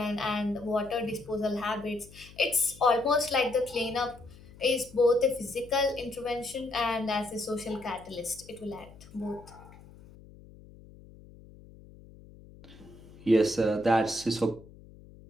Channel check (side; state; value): left; noise; hum, 21 dB below the sound